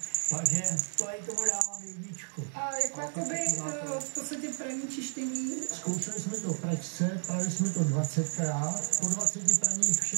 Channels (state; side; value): silent; left; digital silence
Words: takže to i tomu dávám jedničku. A jako jakoby v podstatě praní čištění? Zkoušeli jsme to v pračce, prali jsme to 20krát, po 20 praních